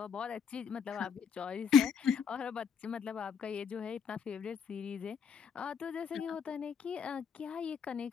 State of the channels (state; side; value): quieter; right; 6.9 dB